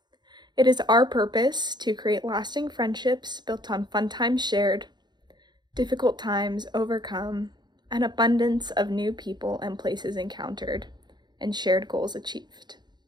it is our purpose to create lasting friendships built on fun times shared, difficult times overcome, an abundance of new people and places encountered, and shared goals achieved.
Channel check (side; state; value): left; late; 0.21 ms